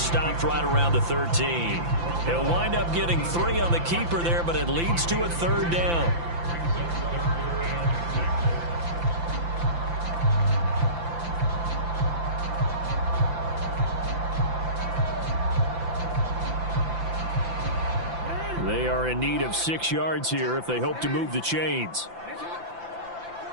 right around the 13. He'll wind up getting 3 on the keeper there, but it leads to a 3rd down. They are in need of 6 yards here if they hope to move the chains.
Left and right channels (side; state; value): left; late; 5.9 ms